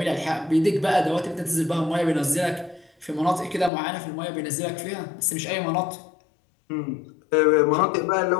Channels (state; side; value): drops out; right; at 3.7 s